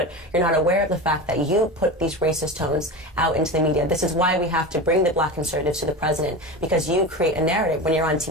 you're not aware of the fact that you put these racist tones out into the media. This is why we have to bring the black conservatives to the president, because you create a narrative when you're on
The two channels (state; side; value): normal; both; correlation 0.26